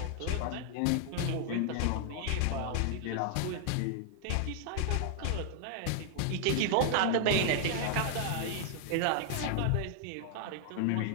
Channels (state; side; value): different; both; correlation -0.01